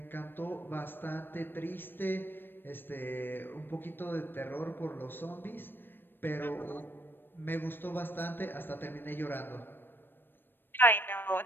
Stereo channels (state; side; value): late; right; 0.096 ms